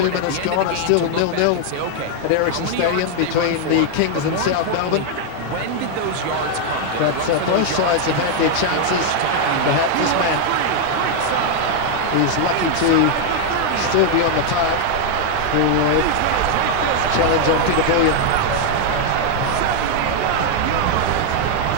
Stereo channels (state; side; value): different; both; correlation 0.00